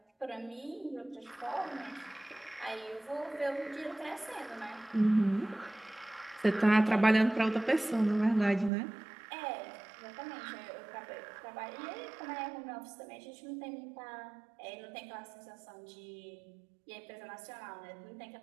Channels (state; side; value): drops out; left; at 8.7 s